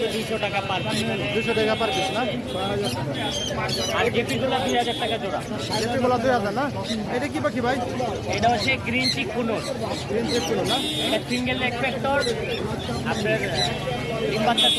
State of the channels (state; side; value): identical; both; correlation 1.00